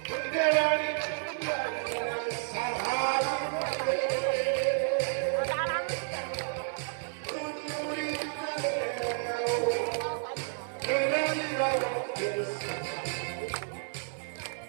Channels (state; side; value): silent; left; digital silence